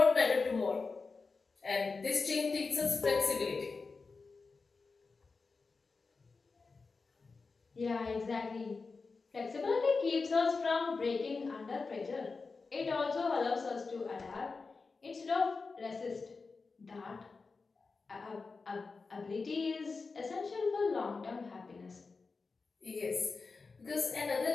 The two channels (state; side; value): quieter; right; 4.3 dB